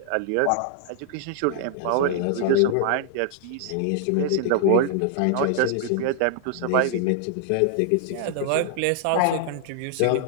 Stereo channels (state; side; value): different; both; correlation -0.01